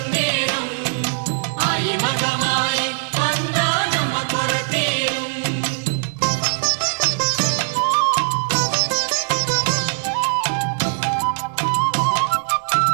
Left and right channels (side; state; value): left; silent; digital silence